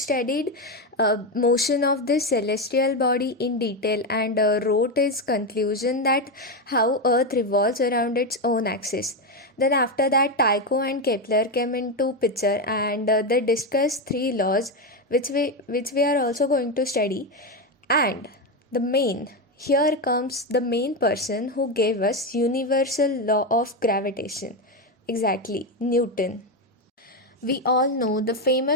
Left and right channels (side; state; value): both; normal; correlation 0.10